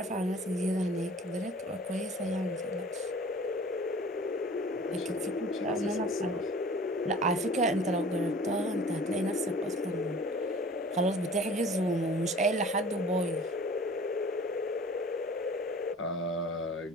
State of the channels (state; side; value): normal; both; correlation 0.46